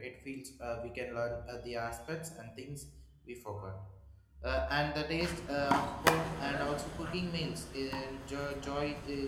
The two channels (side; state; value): both; identical; correlation 1.00